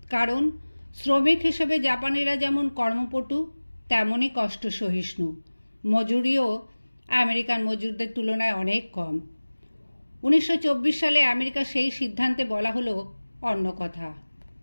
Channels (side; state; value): both; inverted; correlation -1.00